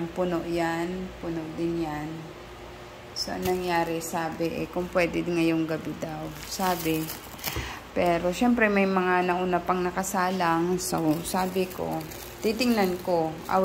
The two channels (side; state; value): both; identical; correlation 1.00